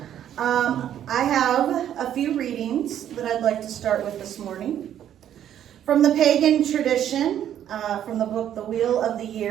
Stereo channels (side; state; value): left; quieter; 10.5 dB